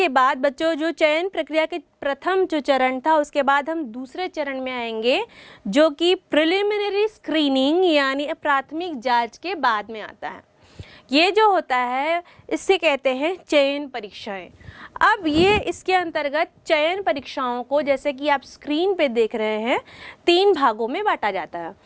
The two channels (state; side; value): identical; both; correlation 1.00